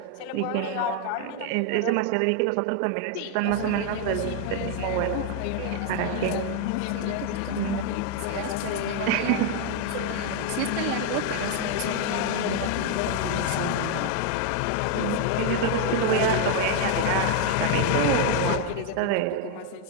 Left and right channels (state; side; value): different; both; correlation 0.01